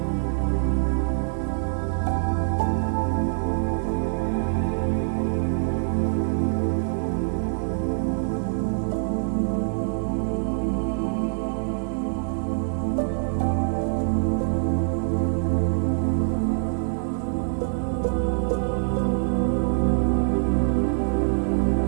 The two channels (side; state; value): left; silent; digital silence